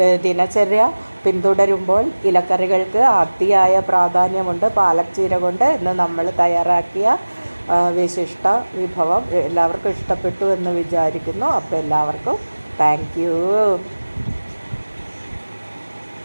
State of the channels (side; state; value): both; inverted; correlation -1.00